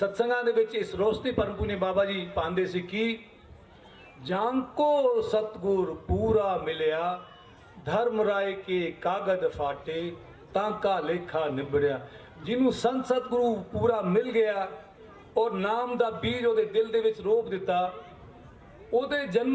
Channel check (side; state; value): both; identical; correlation 1.00